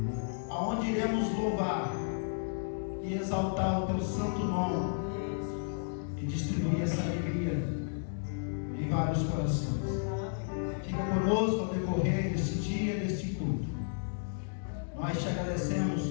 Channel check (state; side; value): silent; right; digital silence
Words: aonde iremos louvar e exaltar o teu santo nome e distribuir essa alegria em vários corações. Fica conosco ao decorrer deste dia, deste culto. Nós te agradecemos